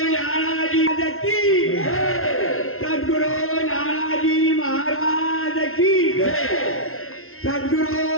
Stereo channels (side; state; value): right; late; 0.62 ms